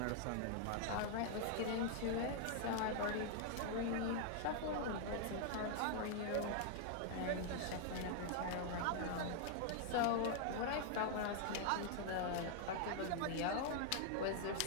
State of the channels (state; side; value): different; both; correlation 0.00